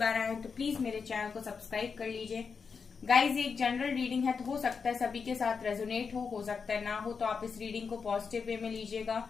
आए हैं तो प्लीज मेरे चैनल को सब्सक्राइब कर लीजिए। गाइस, ये एक जनरल रीडिंग है तो हो सकता है सभी के साथ रेजोनेट हो सकता है ना हो, तो आप इस रीडिंग को पॉजिटिव वे में लीजिएगा।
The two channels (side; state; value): right; quieter; 5.6 dB